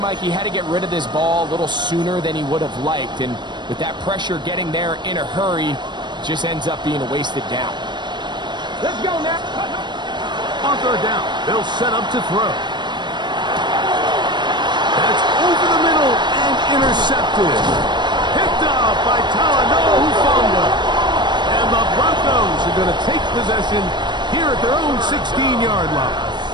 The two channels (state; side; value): late; left; 0.22 ms